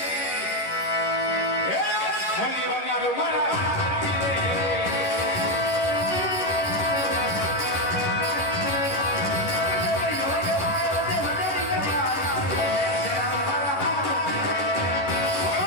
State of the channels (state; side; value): late; right; 11 ms